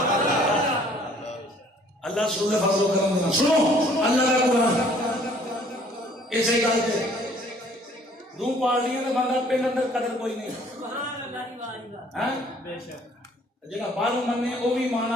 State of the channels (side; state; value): both; normal; correlation 0.58